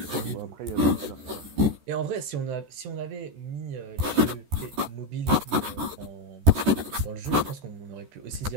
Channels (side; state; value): left; late; 14 ms